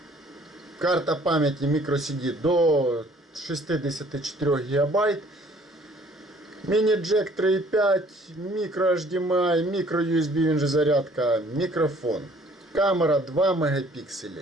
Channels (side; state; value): both; normal; correlation 0.57